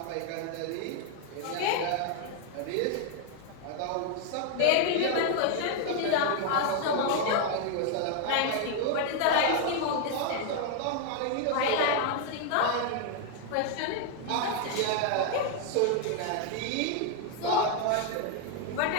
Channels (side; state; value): both; different; correlation 0.00